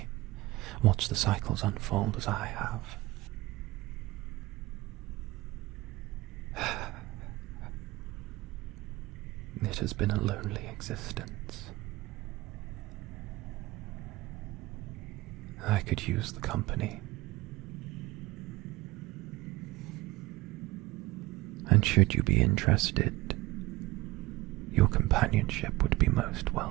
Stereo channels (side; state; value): left; quieter; 19.7 dB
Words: watch the cycles unfold as I have. It has been a lonely existence. I could use the company. And should you be interested, your companionship would be most